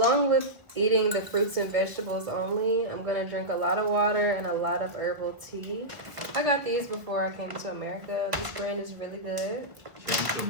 with eating the fruits and vegetables only, I'm gonna drink a lot of water and a lot of herbal tea. I got these before I came to America. This brand is really good. Came to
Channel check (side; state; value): left; late; 1.5 ms